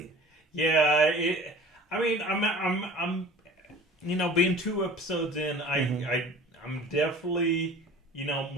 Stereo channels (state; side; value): normal; both; correlation 0.43